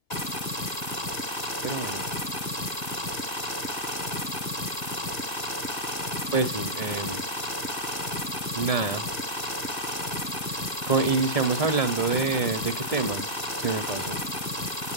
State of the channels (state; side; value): late; right; 1.7 ms